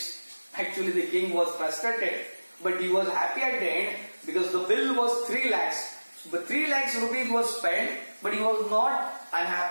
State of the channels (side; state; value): both; inverted; correlation -1.00